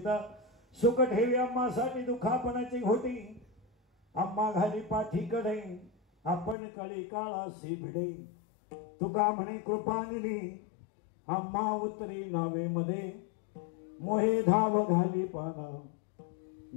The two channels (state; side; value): drops out; right; at 6.6 s